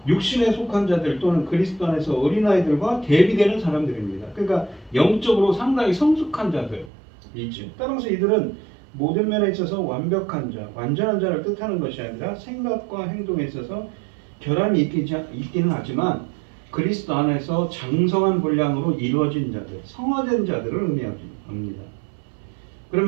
육신에 속한 자들 또는 그리스도 안에서 어린아이들과 대비되는 사람들입니다. 그러니까 영적으로 상당히 성숙한 자들이죠. 따라서 이들은 모든 면에 있어서 완벽한 자, 완전한 자를 뜻하는 것이 아니라 생각과 행동에 있어서 결함이 있기는 하지만 그리스도 안에서 장성한 분량으로 이루어진 자들, 성화된 자들을 의미합니다.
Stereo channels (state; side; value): drops out; left; at 6.9 s